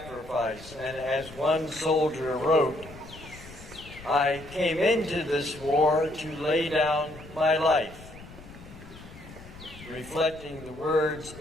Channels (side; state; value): left; noise; rumble, 17 dB below the sound